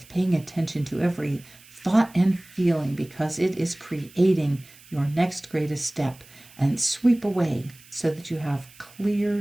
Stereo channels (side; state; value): right; noise; hiss, 24 dB below the sound